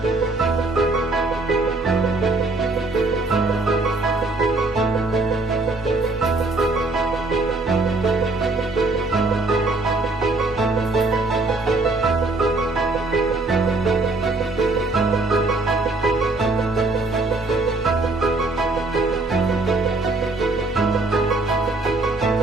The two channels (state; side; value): quieter; left; 3.2 dB